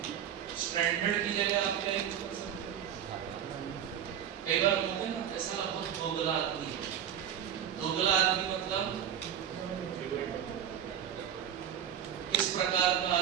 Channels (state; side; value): quieter; left; 9.4 dB